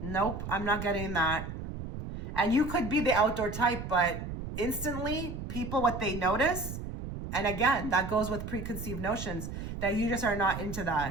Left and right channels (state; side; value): noise; right; rumble, 7 dB below the sound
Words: I'm not getting that. And you could be the outdoor type, but instantly people, what they notice, and again, that goes with preconceived notions, that you just are not into